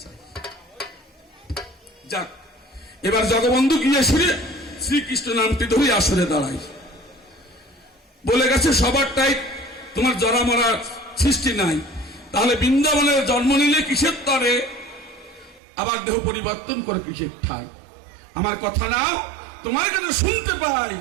চাই। যাক, এবার জগবন্ধু গিয়ে শুনে শ্রীকৃষ্ণ নামটি ধরে আসরে দাঁড়াই। বলে গেছে সবারটাই তোমার জরা মরার সৃষ্টি নাই, তাহলে বৃন্দাবনের জন্ম নিলে কিসের তরে, আবার দেহ পরিবর্তন করে কিসের ঠাই? আমার কথা নাও, তোমার কথা শুনতে পাই।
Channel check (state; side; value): drops out; left; at 15.6 s